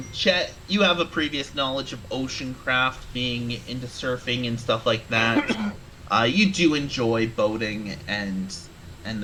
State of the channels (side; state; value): both; identical; correlation 1.00